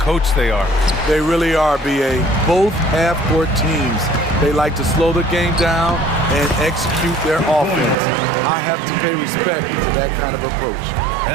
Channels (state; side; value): drops out; left; at 8.0 s